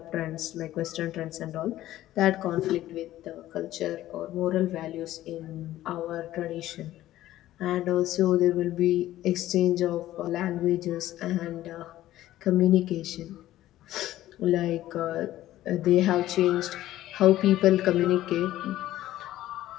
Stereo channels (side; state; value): right; quieter; 14.4 dB